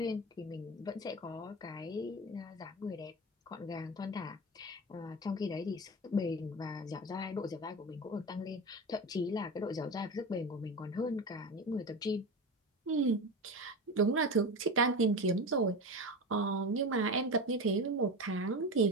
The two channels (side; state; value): both; normal; correlation 0.24